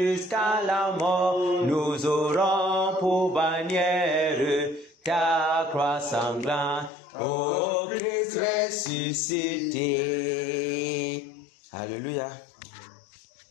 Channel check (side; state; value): right; drops out; at 6.9 s